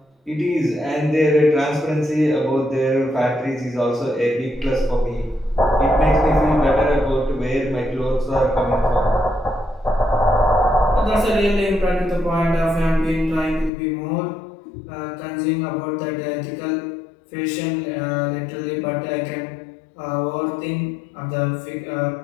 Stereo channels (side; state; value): right; drops out; at 13.7 s